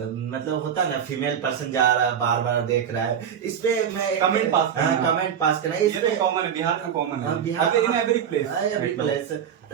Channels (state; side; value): quieter; left; 8.4 dB